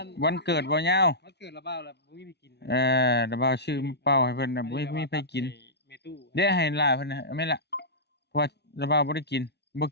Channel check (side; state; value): right; late; 0.49 ms